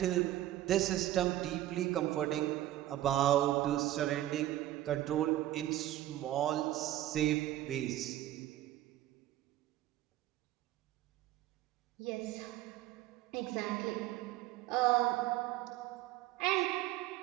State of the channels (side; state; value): left; quieter; 14.2 dB